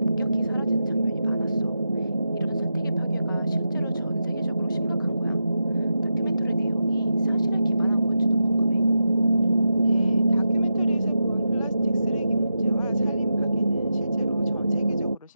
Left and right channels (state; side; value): inverted; both; correlation -0.88